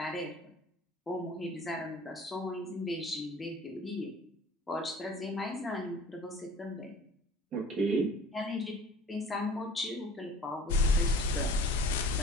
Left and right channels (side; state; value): both; normal; correlation 0.46